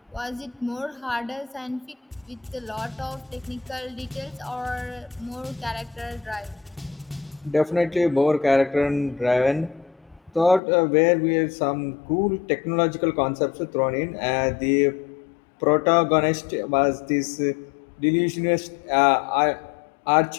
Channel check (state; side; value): drops out; right; at 10.6 s